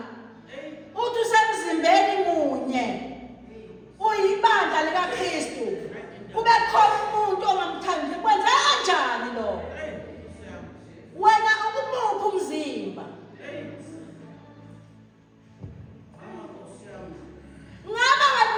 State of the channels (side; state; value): both; identical; correlation 1.00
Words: Uthi usemzimbeni munye. Uyibandla likaKristu. Kube khona umuntu ongamthandi. Kwenza kanjani lo? Wena ukumuphi umzimba? Ngaba